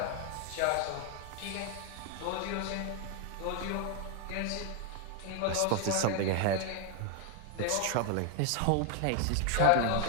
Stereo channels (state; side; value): different; both; correlation 0.01